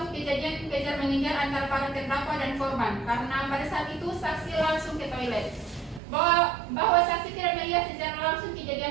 kejadian kejar-mengejar antara para terdakwa dan korban, karena pada saat itu saksi langsung ke toilet. Bahwa saksi tidak melihat secara langsung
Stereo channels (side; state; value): left; drops out; at 6.0 s